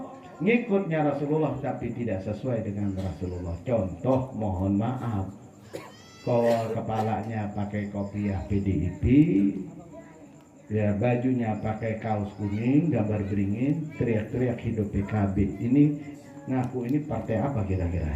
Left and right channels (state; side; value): identical; both; correlation 1.00